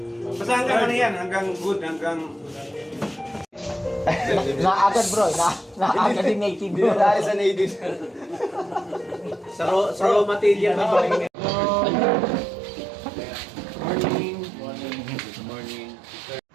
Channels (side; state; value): left; drops out; at 11.3 s